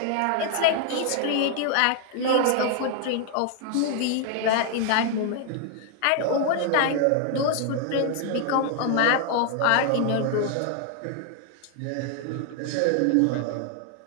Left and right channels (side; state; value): both; different; correlation 0.00